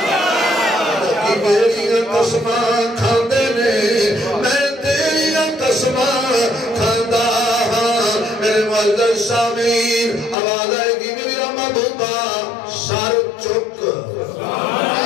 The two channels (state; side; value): drops out; right; at 10.4 s